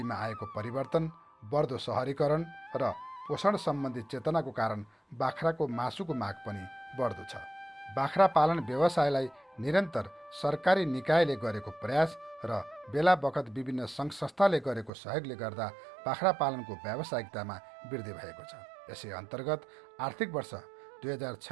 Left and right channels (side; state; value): left; drops out; at 14.9 s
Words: आएको परिवर्तन, बढ्दो सहरीकरण र पोषण सम्बन्धी चेतनाको कारण बाख्राको मासुको माग पनि बढ्दो छ। बाख्रा पालन व्यवसायलाई निरन्तर सरकारी निकायले गरेको प्रयास र बेला बखत विभिन्न सङ्घ संस्थाले गरेको सहयोगले गर्दा बाख्रा पालनको व्यावसायिकतामा वृद्धि भएको छ। यसै अन्तर्गत आर्थिक वर्ष